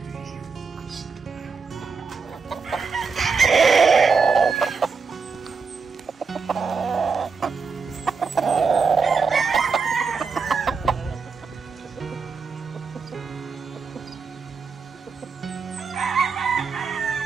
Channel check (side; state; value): left; quieter; 5.2 dB